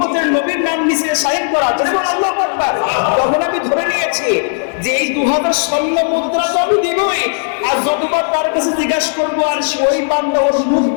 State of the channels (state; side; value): silent; right; digital silence